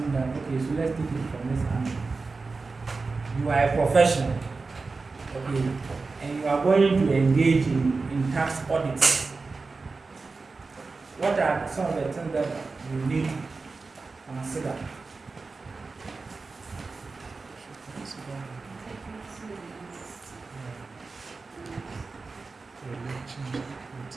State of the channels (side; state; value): left; quieter; 4.1 dB